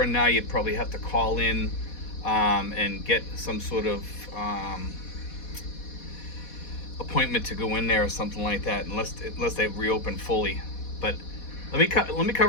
now you'd probably have to call in and get some sort of appointment to go in there or something like that, unless they reopen fully. But let me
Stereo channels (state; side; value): late; right; 4.1 ms